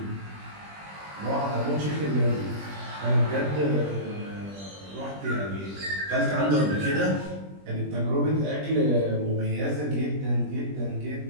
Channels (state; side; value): late; left; 20 ms